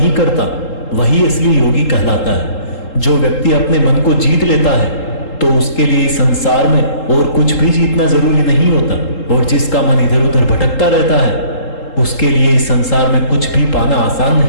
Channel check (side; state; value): right; late; 3.8 ms